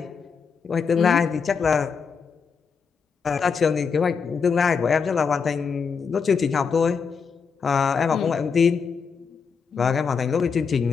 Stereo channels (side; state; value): right; quieter; 5.8 dB